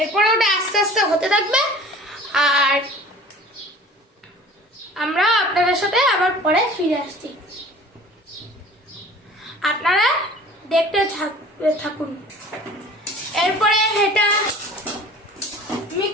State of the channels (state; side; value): normal; both; correlation 0.45